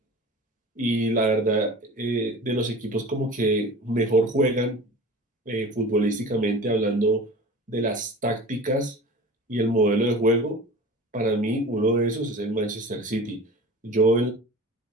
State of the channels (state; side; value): normal; both; correlation 0.37